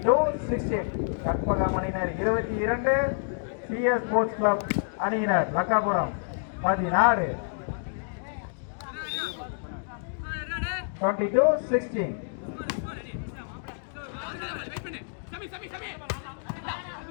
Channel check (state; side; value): silent; right; digital silence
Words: கற்பகம் அணியினர் 22, சிஎஸ் ஸ்போர்ட்ஸ் கிளப் அணியினர் லக்காபுரம் 16. 22-16.